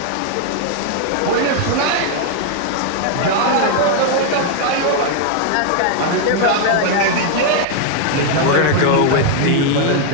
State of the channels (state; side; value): different; both; correlation 0.00